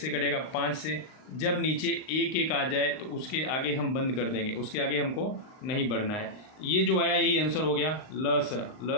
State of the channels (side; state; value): right; late; 38 ms